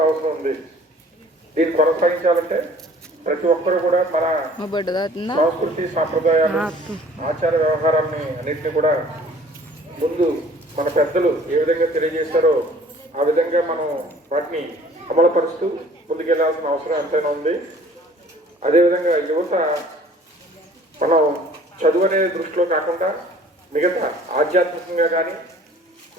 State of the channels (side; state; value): both; normal; correlation 0.52